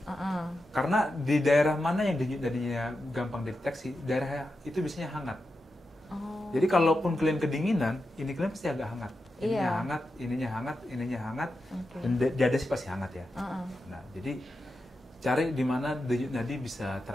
Uh-uh. Karena di daerah mana yang denyut nadinya gampang deteksi, daerah itu biasanya hangat. Oh. Jadi kalaupun kalian kedinginan, ini kalian pasti agak hangat. Ininya Iya. hangat, ininya hangat, Oke. dan dada sih pasti hangat ya. Uh-uh. Nah, jadi cari di mana denyut nadi bisa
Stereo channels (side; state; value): both; normal; correlation 0.89